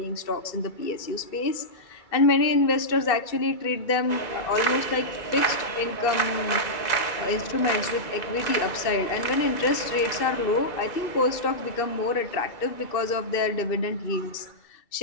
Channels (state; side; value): late; right; 2.6 ms